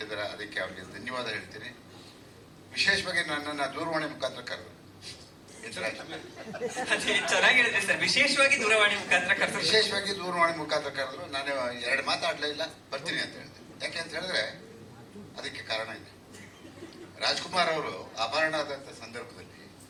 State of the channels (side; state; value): both; identical; correlation 1.00